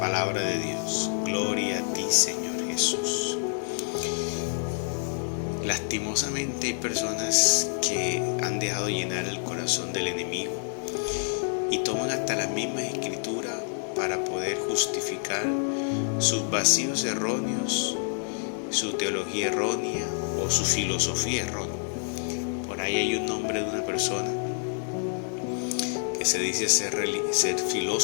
de Dios. Gloria a ti, Señor Jesús. Lastimosamente hay personas que han dejado llenar el corazón del enemigo y toman hasta las mismas escrituras para poder justificar sus vacíos erróneos, su teología errónea o su filosofía errónea. Por ahí hay un nombre de una persona que se dice ser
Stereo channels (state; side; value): silent; right; 56 dB below the other